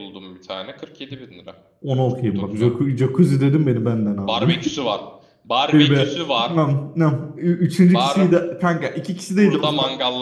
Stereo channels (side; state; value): both; identical; correlation 1.00